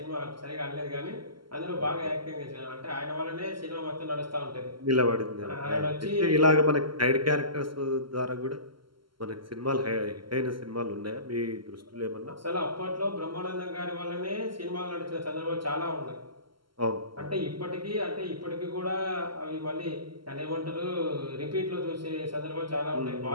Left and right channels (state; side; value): late; left; 0.73 ms